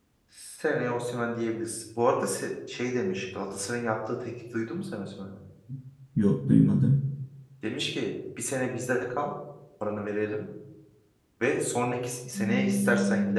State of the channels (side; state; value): both; identical; correlation 1.00